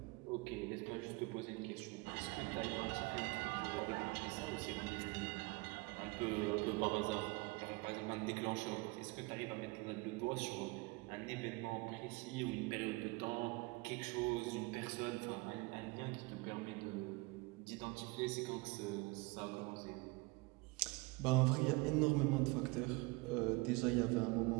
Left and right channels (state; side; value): quieter; left; 25.7 dB